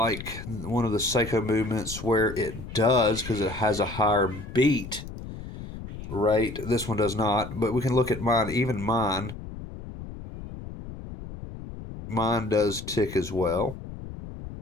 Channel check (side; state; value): left; noise; rumble, 11 dB below the sound